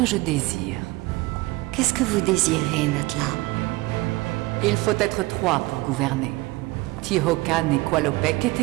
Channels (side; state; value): left; quieter; 21.1 dB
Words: je désire. Qu'est-ce que vous désirez, Natla? Il faut être 3 pour gouverner. Tihocan et Qualopec